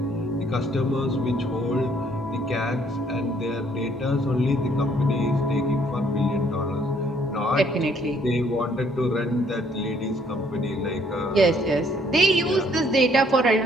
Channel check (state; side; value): normal; both; correlation 0.65